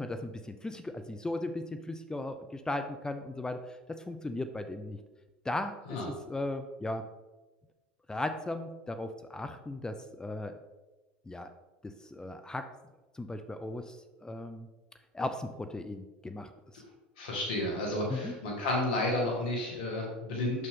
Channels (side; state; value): both; normal; correlation 0.52